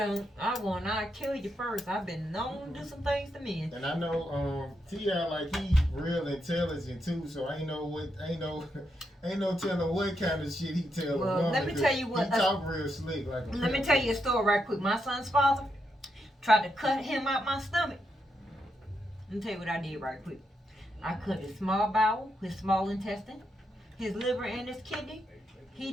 kill you first. I've been known to do some things to men. And I know, T.I., like, he real intelligent, too, so ain't no telling what kind of shit he tell a Well, woman. let me tell you what- He talk real slick, like a Let me pimp. tell you a story right quick. My son's father tried to cut him out my stomach. Let me tell you what I did right quick. I cut his small bowel, his small intestine, his liver, and his kidney.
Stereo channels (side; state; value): both; normal; correlation 0.82